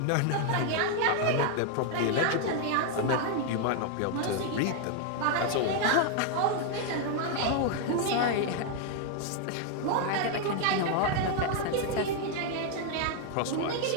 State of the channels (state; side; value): different; both; correlation 0.00